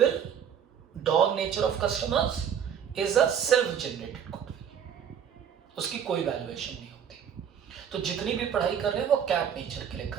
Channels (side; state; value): left; quieter; 8.3 dB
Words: dog nature of customers is a self generated goodwill, उसकी कोई वैल्यूएशन नहीं होती। तो जितनी भी पढ़ाई कर रहे हैं वो कैट नेचर के लिए